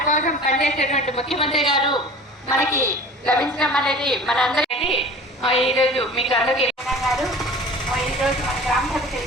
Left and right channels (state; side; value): normal; both; correlation 0.42